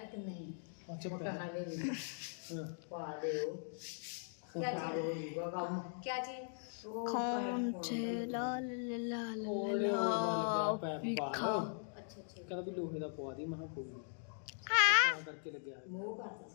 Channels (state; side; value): silent; right; digital silence